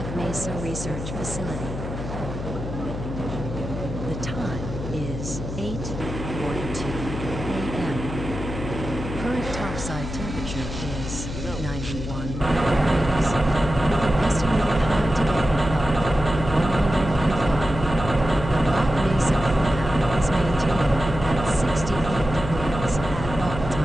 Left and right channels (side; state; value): left; noise; hum, 7 dB below the sound